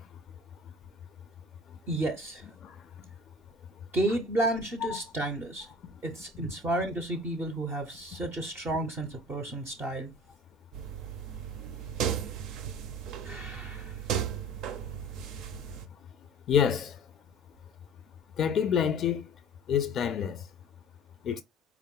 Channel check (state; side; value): normal; both; correlation 0.42